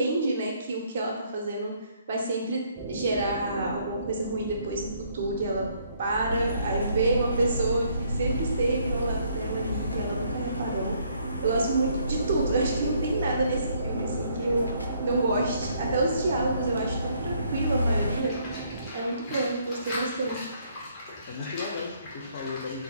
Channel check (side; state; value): both; inverted; correlation -0.67